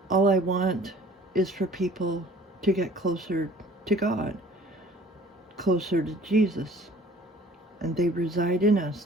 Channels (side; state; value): both; normal; correlation 0.51